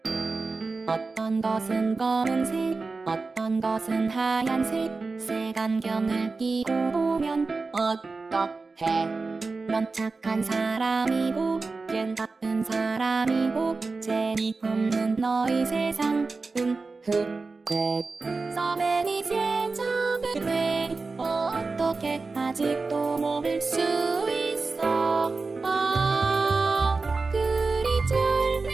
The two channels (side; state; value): left; quieter; 4.0 dB